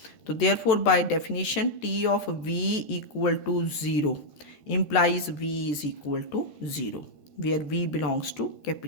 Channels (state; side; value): late; right; 13 ms